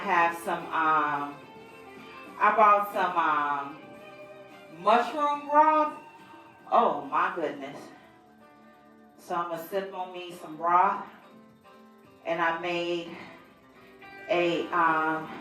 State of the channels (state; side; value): identical; both; correlation 1.00